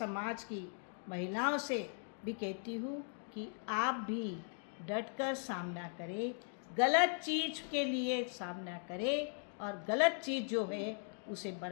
की महिलाओं से भी कहती हूँ कि आप भी डट कर सामना करें, गलत चीज़ के लिए सामना करें और गलत चीज़ जो है उसे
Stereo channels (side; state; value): right; silent; 52 dB below the other